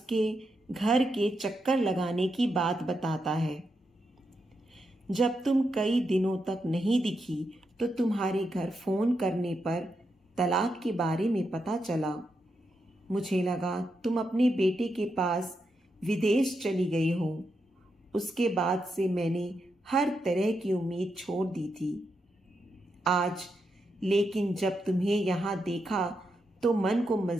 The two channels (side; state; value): both; normal; correlation 0.84